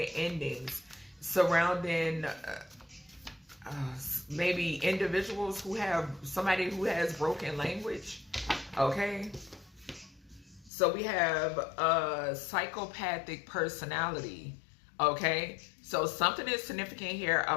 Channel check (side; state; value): right; drops out; at 10.7 s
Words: endings surrounding maybe individuals who have somebody who has broken language. Okay. So we have a psychopathic personality, okay? So something is significant here